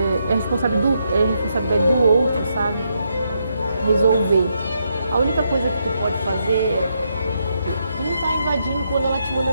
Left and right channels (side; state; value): both; inverted; correlation -0.80